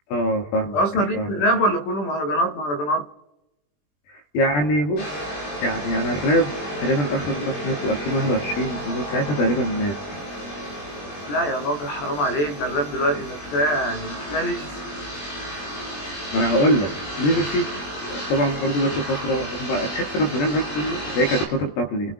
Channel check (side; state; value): right; late; 20 ms